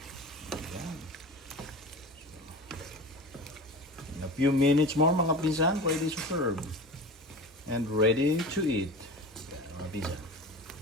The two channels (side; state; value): both; normal; correlation 0.32